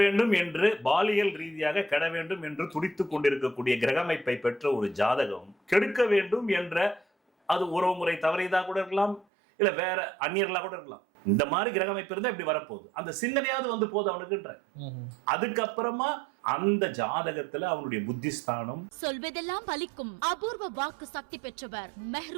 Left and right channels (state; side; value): drops out; left; at 9.2 s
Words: வேண்டும் என்று பாலியல் ரீதியாக கெட வேண்டும் என்று துடித்து கொண்டிருக்கக்கூடிய கிரகமைப்பை பெற்ற ஒரு ஜாதகம் கெடுக்க வேண்டும் என்ற, அது உறவுமுறை தவறியதாக கூட இருக்கலாம், இல்ல வேற அந்நியர்களாக கூட இருக்கலாம். இந்த மாதிரி கிரகமைப்பு இருந்தா இப்படி வரப்போகுது, அந்த சிந்தனையாவது வந்து போகுது அவனுக்குன்ற. அதுக்கப்புறமா அந்த ஜாதகத்துல அவனுடைய புத்திஸ்தானம் சொல்வதெல்லாம் பலிக்கும் அபூர்வ வாக்கு சக்தி பெற்றவர்